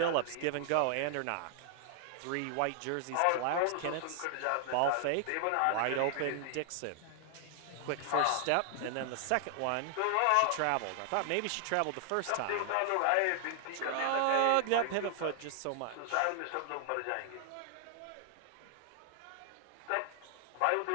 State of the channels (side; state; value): both; different; correlation 0.00